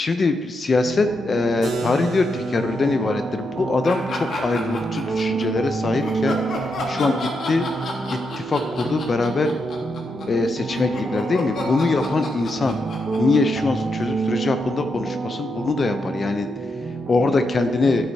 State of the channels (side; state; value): both; normal; correlation 0.83